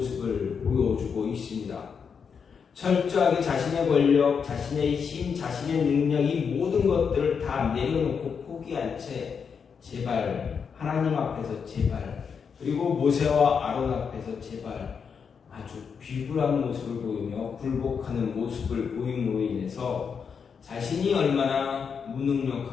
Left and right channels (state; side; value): quieter; right; 6.4 dB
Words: 보여주고 있습니다. 철저하게 자신의 권력, 자신의 힘, 자신의 능력 이 모든 것들을 다 내려놓고 포기한 채 제발 하나님 앞에서 제발 그리고 모세와 아론 앞에서 제발 아주 비굴한 모습을 보이며 굴복하는 모습을 보임으로 인해서 자신이 얼마나